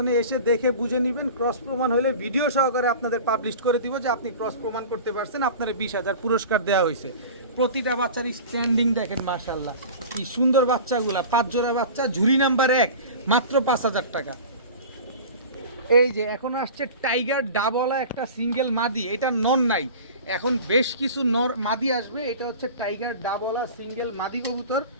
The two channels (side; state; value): both; inverted; correlation -0.37